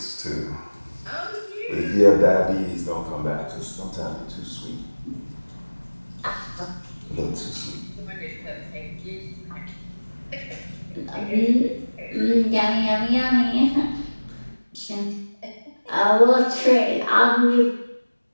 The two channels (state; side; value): inverted; both; correlation -1.00